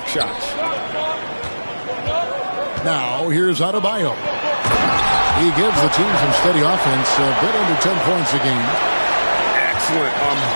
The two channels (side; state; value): both; inverted; correlation -1.00